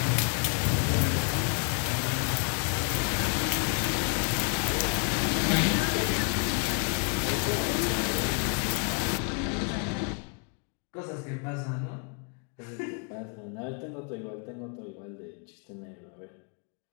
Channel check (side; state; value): right; quieter; 37.5 dB